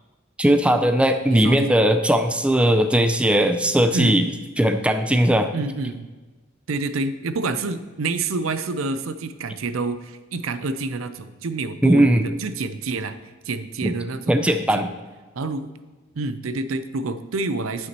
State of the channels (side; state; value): both; normal; correlation 0.71